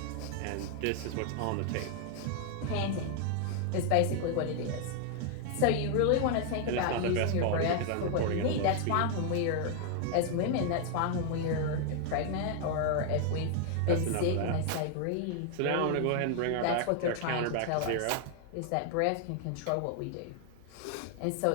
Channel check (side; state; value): both; different; correlation 0.00